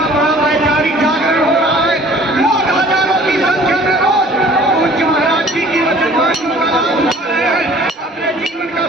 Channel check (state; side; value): normal; both; correlation 0.51